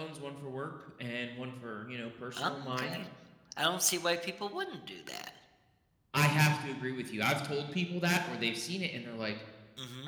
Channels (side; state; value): both; identical; correlation 1.00